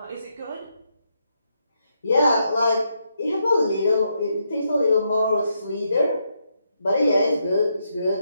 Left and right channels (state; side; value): inverted; both; correlation -0.79